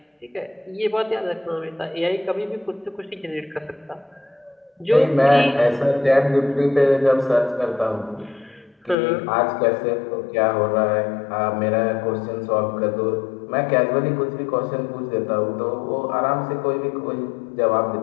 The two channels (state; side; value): drops out; right; at 9.0 s